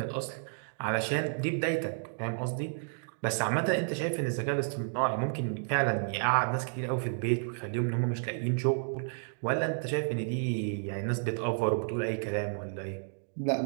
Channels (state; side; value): silent; left; digital silence